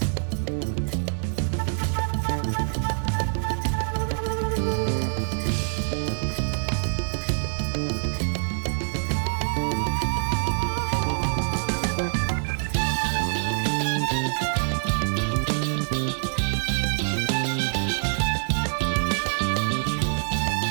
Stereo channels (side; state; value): left; silent; digital silence